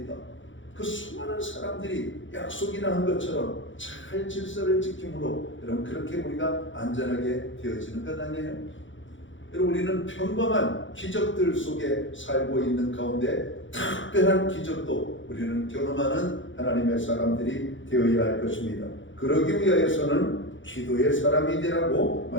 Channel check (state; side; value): late; right; 0.56 ms